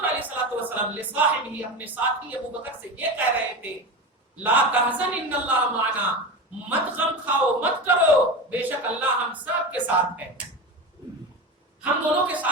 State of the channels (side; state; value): both; normal; correlation 0.24